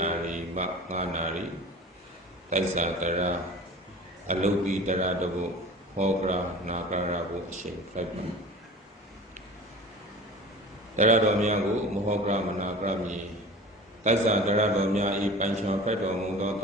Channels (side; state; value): both; normal; correlation 0.39